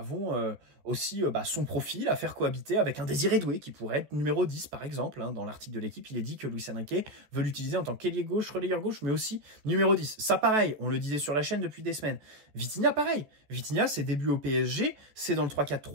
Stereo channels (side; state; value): left; late; 14 ms